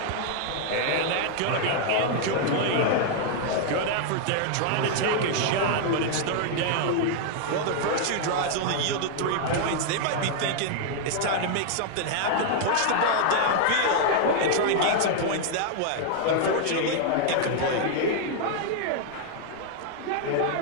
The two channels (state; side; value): different; both; correlation 0.00